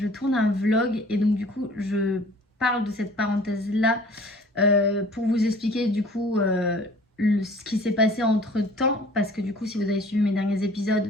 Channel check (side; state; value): both; normal; correlation 0.50